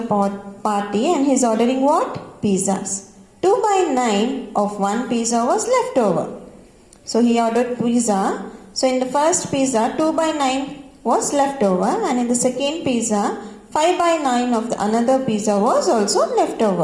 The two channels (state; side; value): identical; both; correlation 1.00